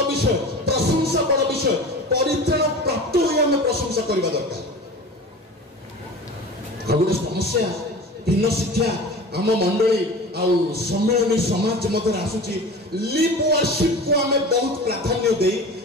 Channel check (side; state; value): both; normal; correlation 0.36